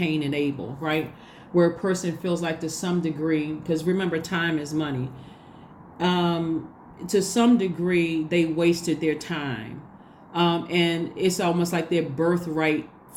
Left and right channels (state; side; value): identical; both; correlation 1.00